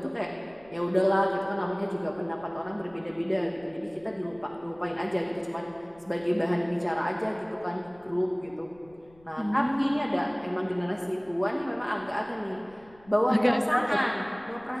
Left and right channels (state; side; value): noise; left; rumble, 27 dB below the sound